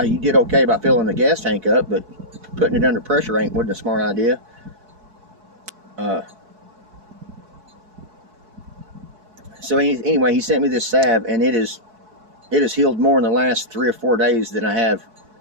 you did okay by filling the gas tank up, but putting it under pressure wasn't a smart idea. So anyway, he sent me this salve, and it has healed more in the last 3 or 4 days than I have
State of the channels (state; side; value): late; left; 4.7 ms